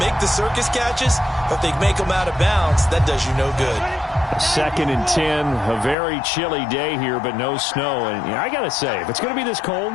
the circus catches, but if they make them out of bounds, that does you no good. 2nd and 10, a very chilly day here, but no snow. And I got to say, if it's going to be this cold,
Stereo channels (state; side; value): drops out; right; at 6.0 s